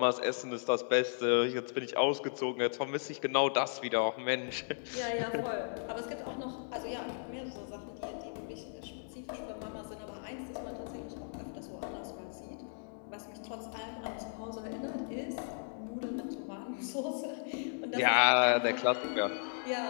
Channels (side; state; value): right; silent; digital silence